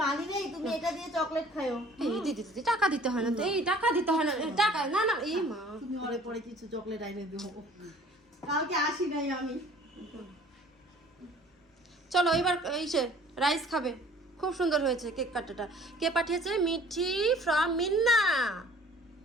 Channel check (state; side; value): normal; both; correlation 0.51